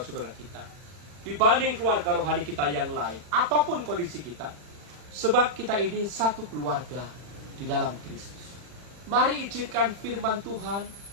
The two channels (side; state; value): left; late; 40 ms